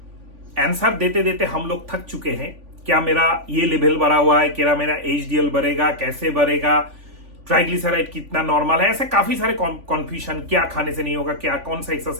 आंसर देते देते हम लोग थक चुके हैं। क्या मेरा ये लेवल बढ़ा हुआ है, क्या मेरा एचडीएल बढ़ेगा, कैसे बढ़ेगा, ट्राइग्लिसराइड कितना नॉर्मल है, ऐसे काफी सारे कॉन्फ्यूजन। क्या खाने से नहीं होगा, क्या कौन सा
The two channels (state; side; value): late; left; 3.5 ms